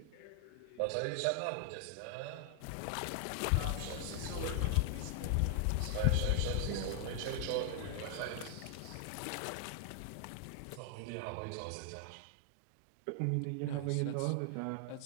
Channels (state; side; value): different; both; correlation 0.00